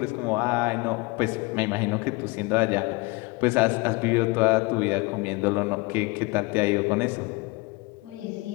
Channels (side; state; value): right; quieter; 25.5 dB